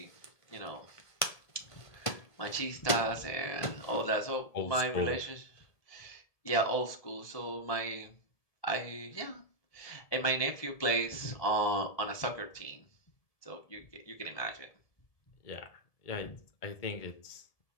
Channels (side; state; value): right; late; 1.7 ms